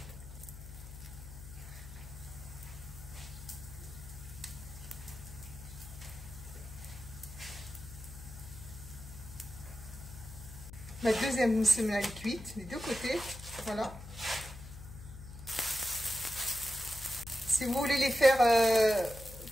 Ma deuxième semelle est cuite des deux côtés, voilà. Si vous voulez les faire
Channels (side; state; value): left; noise; hum, 13 dB below the sound